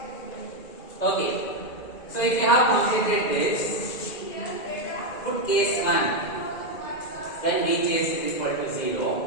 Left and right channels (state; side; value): late; right; 2.0 ms